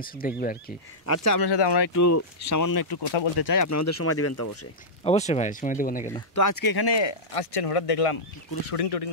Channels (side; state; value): both; normal; correlation -0.11